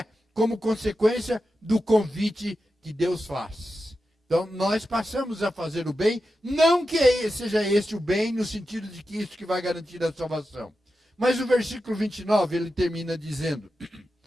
como consequência do convite que Deus faz. Então, nós passamos a fazer o bem, não que seja este o bem, no sentido de que isso que vai garantir a salvação. Mas o versículo 29, ele termina dizendo,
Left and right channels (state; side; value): normal; both; correlation 0.90